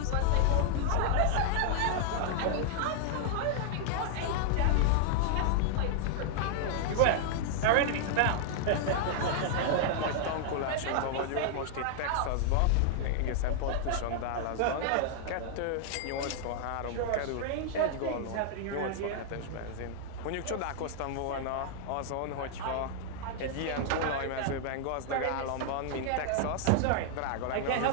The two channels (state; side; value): different; both; correlation -0.01